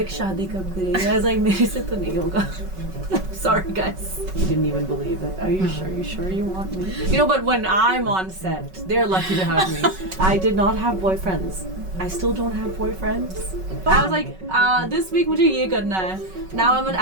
शादी कब करेगी? I was like, मेरे से तो नहीं होगा. Sorry guys. Didn't even believe it. Are you sure? You sure you want me? You know, but when I'm on set, they're lucky to have me. I did not have boyfriends. I still don't have boyfriends. I was like, this week मुझे ये करना है. Now I'm an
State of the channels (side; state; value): left; late; 5.3 ms